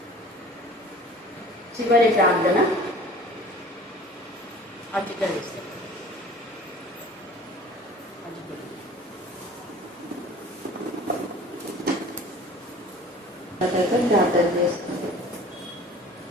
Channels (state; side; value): normal; both; correlation 0.45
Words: చివరి ప్రార్థన అధికరిస్తాం. ప్రార్థన చేస్తుంది.